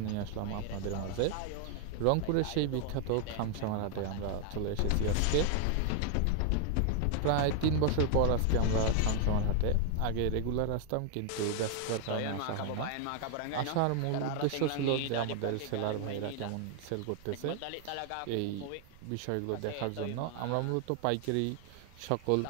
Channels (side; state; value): both; different; correlation 0.00